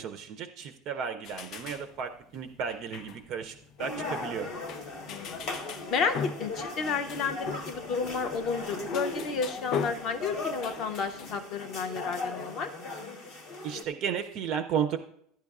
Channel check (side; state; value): both; normal; correlation 0.35